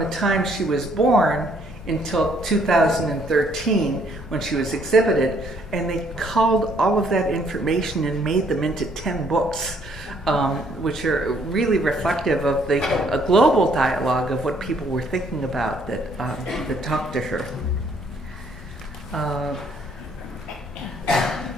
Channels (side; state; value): both; normal; correlation 0.66